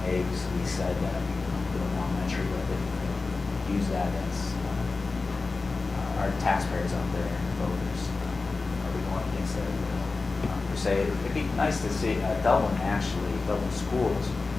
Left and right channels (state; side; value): quieter; right; 3.9 dB